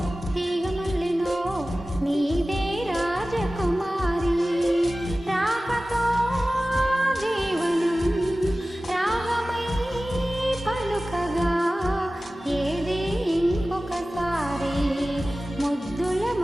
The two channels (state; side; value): normal; both; correlation 0.96